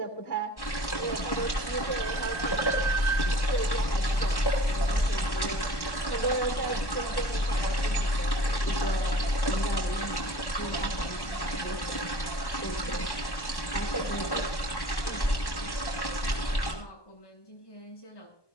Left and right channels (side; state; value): right; late; 1.2 ms